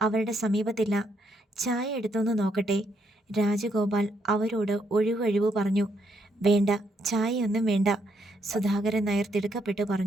അവരുടെ സമീപത്തില്ല. ചായ എടുത്തൊന്ന് നോക്കട്ടെ? രാജഗോപാൽ അവരോട് ഒഴിവൊഴിവ് പറഞ്ഞു. വേണ്ട, ചായയൊന്നും വേണ്ട, സുധാകരൻ നായർ തിടുക്കപ്പെട്ട്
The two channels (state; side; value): normal; both; correlation 0.74